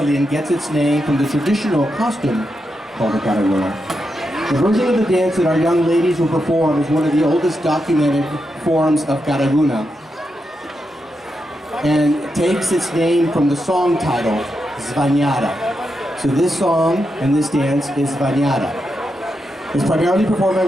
and gets its name from the traditional costume called the Karaguna. The version of the dance that our young ladies will perform is one of the oldest documented forms of Karaguna and takes its name from the song title, Zvanyata. So this song and this dance is Zvanyata. It's primarily performed by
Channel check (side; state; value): both; normal; correlation 0.85